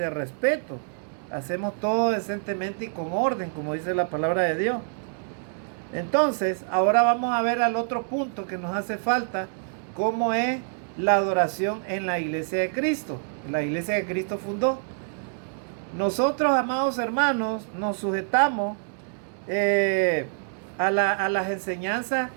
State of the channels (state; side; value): silent; left; 61 dB below the other